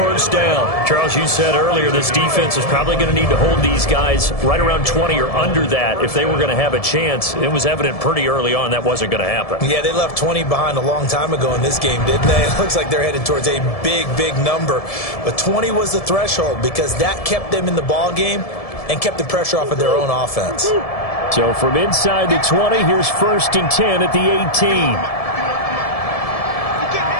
down. Charles, you said earlier this defense is probably going to need to hold these guys right around 20 or under that if they were going to have a chance. It was evident pretty early on that wasn't going to happen. Yeah, they left 20 behind a long time ago in this game, didn't they? It looks like they're headed towards a big, big number. But 20 was the threshold because that kept them in the ball game and kept the pressure off of their own offense. So from inside the 20, here's 1st and 10 at the 18.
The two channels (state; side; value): late; right; 1.7 ms